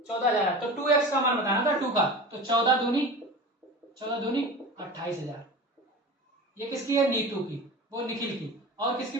14,000 आया, तो 2x का मान बताना था 2 का, तो 14 दूनी 28,000, ये किसकी है नीतू की, वो निखिल की, और किसकी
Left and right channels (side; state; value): both; normal; correlation 0.33